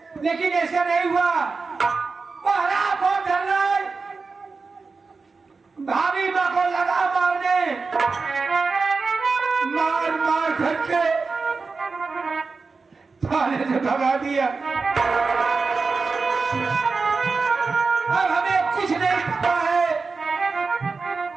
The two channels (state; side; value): quieter; left; 4.4 dB